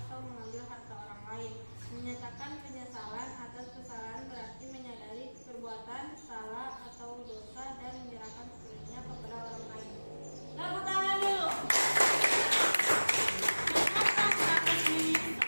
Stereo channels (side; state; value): both; inverted; correlation -1.00